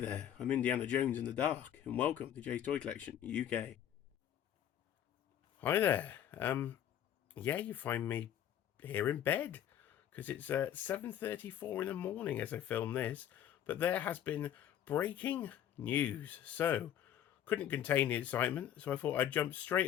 I'm Indiana Jones in the Dark, and welcome to Jay's Toy Collection, UK. Hi there, yeah, you find me here in bed, because it's 7:34 in the morning as I film this, but there has been breaking news, so couldn't contain the excitement, so I thought I'd jump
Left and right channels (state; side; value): quieter; right; 10.4 dB